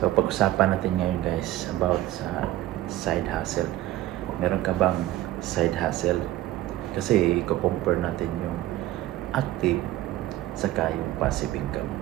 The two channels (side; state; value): left; quieter; 15.3 dB